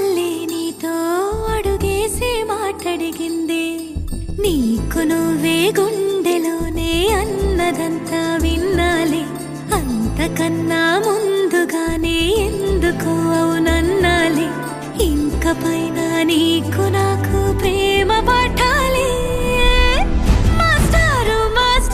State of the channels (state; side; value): identical; both; correlation 1.00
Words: నీతో అడుగేసి మాటడిగిందే నీకు నువ్వే గుండెలోనే అన్నదంతా విన్నాలే అంతకన్నా ముందుగానే ఎందుకు అవునన్నాలే ఇంక పైన నీకు నాకు ప్రేమ పాఠాలే మాస్టారు